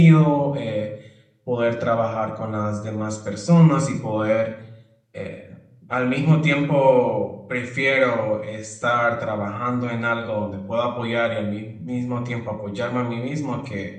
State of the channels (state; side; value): identical; both; correlation 1.00